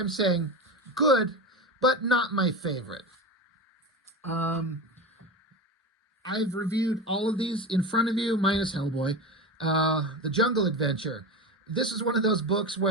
saying, good, but not my favorite. I've reviewed all of these in front of you, minus Hellboy. The Jungle Adventure. This is one of those books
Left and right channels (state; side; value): normal; both; correlation 0.24